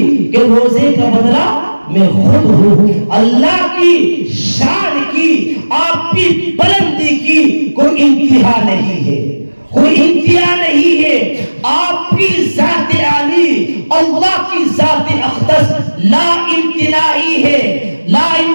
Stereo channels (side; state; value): both; inverted; correlation -1.00